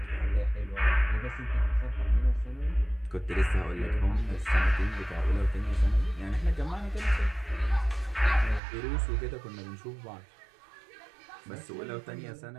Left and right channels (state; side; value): drops out; left; at 8.6 s